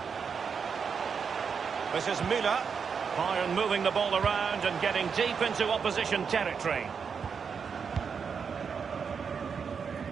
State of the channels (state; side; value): quieter; left; 6.2 dB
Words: This is Müller. Bayern moving the ball around and getting deep into opposition territory.